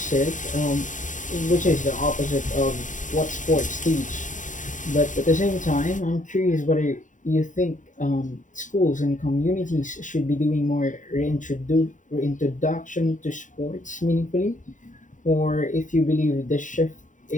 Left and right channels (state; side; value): late; right; 0.37 ms